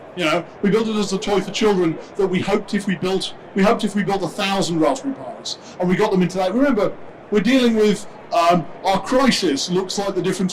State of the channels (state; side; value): identical; both; correlation 1.00